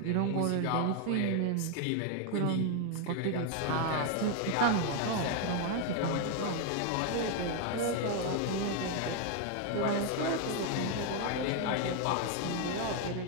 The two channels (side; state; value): both; different; correlation 0.01